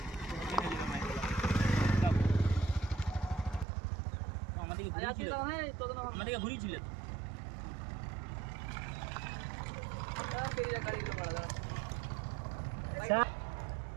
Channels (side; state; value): left; drops out; at 3.7 s